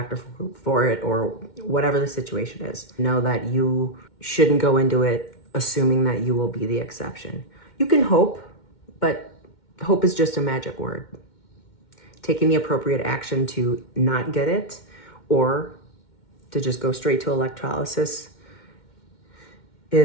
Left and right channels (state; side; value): late; right; 2.1 ms